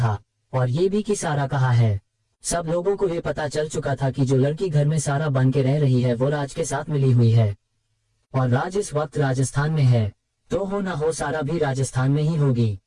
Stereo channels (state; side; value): identical; both; correlation 1.00